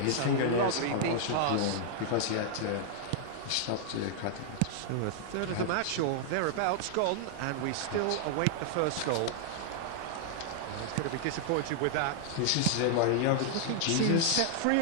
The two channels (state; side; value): different; both; correlation -0.01